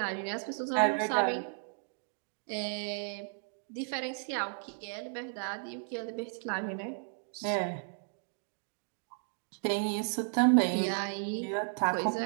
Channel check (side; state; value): left; silent; digital silence